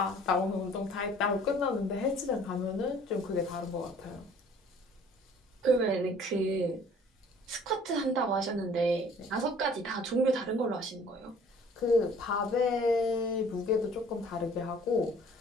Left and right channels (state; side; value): normal; both; correlation 0.53